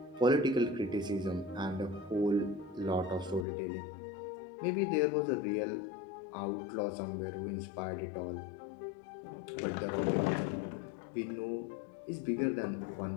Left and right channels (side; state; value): right; drops out; at 3.5 s